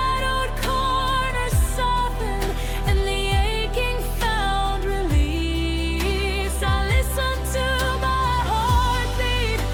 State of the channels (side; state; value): both; identical; correlation 1.00